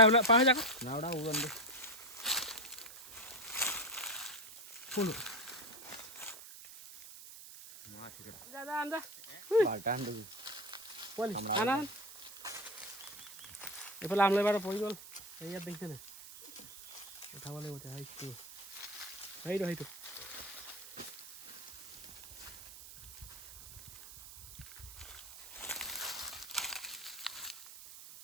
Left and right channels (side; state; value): right; noise; hiss, 15 dB below the sound